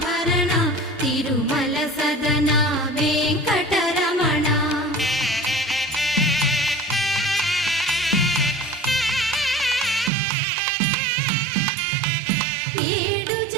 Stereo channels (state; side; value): drops out; left; at 10.1 s